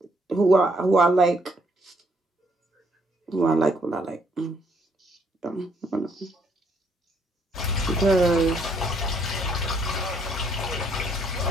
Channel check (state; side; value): normal; both; correlation 0.69